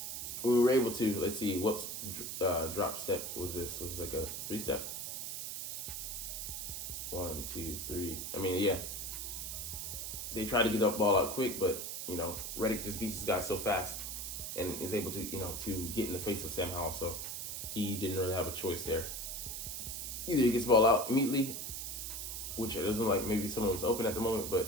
were able to, let's see, what drop step was this? Was it like a 3-step? 1, 2, 3. They tried to get the ball out quick, but Reddick just beats this guy so fast and is able to to get in the face of Sam Howell. So he didn't really have a choice there. Either he gets the ball out immediately, which it doesn't like maybe someone was open at the moment,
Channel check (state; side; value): noise; right; hiss, 5 dB below the sound